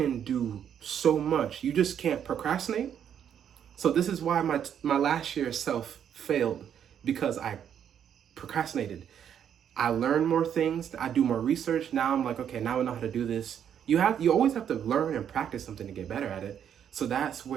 do so much. You just can't procrastinate. So this is why my last year self failed, because I procrastinated. I learned more things. I do more research. Now I'm like, okay, now I know how to do this. You always have to learn and practice something to get better at it. So that's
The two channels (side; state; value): left; quieter; 8.9 dB